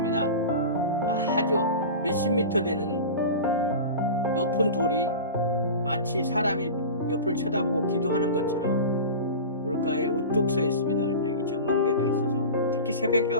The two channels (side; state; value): both; inverted; correlation -0.31